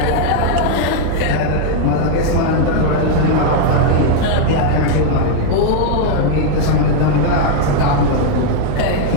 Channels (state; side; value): different; both; correlation 0.00